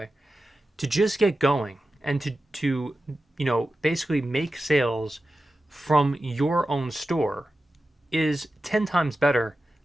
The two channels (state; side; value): normal; both; correlation 0.93